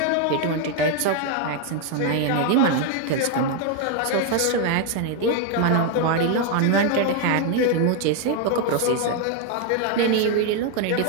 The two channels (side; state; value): both; different; correlation 0.01